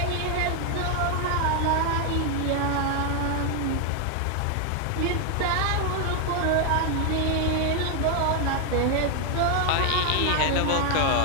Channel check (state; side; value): different; both; correlation 0.00